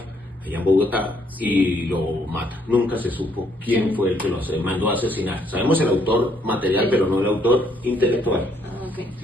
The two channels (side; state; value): both; normal; correlation 0.69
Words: allá en Bogotá, y lo mata. Nunca se supo quién fue el que lo mandó a asesinar. Sabemos el autor material, pero no el autor intelectual. Okay.